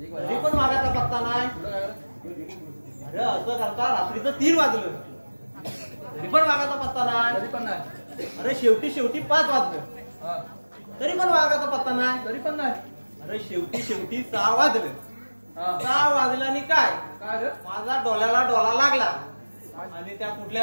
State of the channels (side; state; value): both; inverted; correlation -1.00